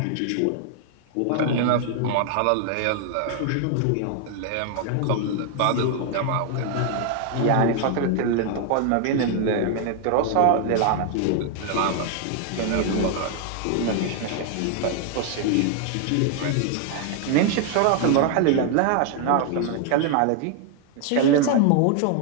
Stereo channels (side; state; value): both; different; correlation 0.00